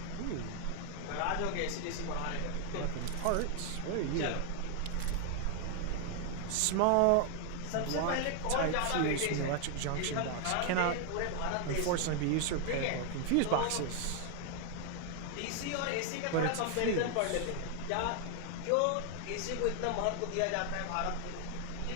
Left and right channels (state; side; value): different; both; correlation 0.00